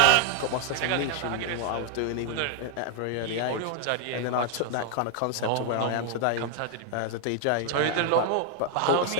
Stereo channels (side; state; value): both; different; correlation 0.00